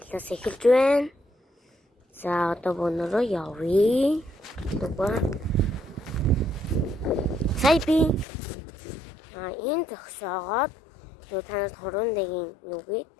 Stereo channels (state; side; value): drops out; right; at 8.2 s